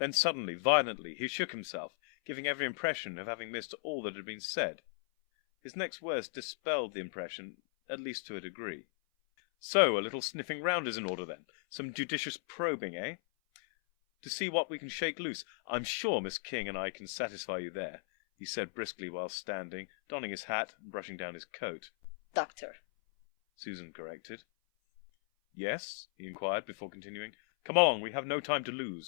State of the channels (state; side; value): silent; right; 53 dB below the other